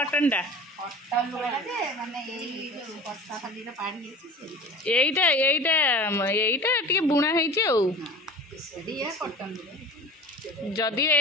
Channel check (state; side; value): normal; both; correlation 0.38